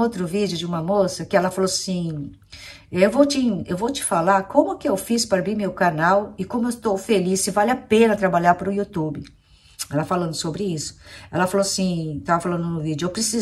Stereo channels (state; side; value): identical; both; correlation 1.00